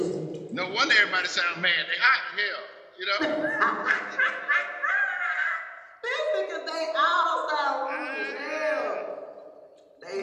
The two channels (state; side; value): identical; both; correlation 1.00